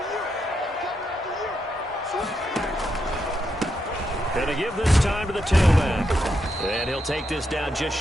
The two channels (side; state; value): both; normal; correlation 0.82